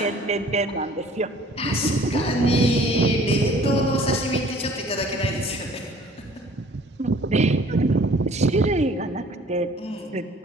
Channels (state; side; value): normal; both; correlation 0.52